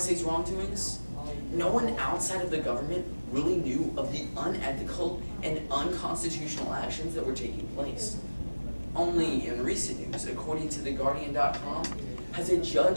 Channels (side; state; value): both; inverted; correlation -1.00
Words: wrongdoings, no one outside of the government really knew of the unethical and unconstitutional actions that were taking place. Only in recent news, according to TheGuardian.com, has a